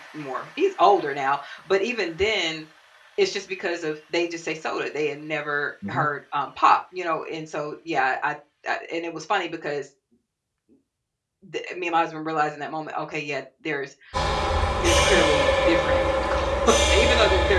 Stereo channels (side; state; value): both; identical; correlation 1.00